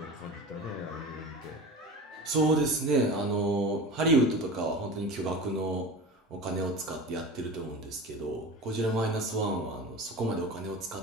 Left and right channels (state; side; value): normal; both; correlation 0.32